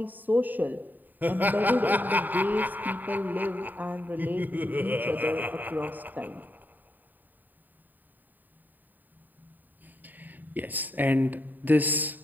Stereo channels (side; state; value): left; late; 0.088 ms